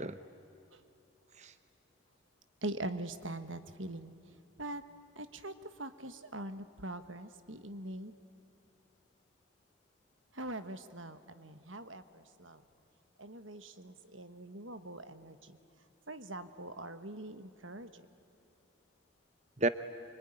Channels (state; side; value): normal; both; correlation 0.16